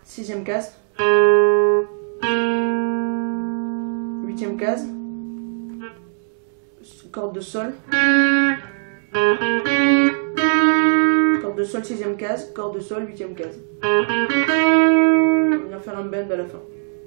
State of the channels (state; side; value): silent; left; digital silence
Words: 6e case, 8e case, corde de Sol, corde de Sol 6e case, corde de Sol 8e case. On va venir faire un bend à la fin.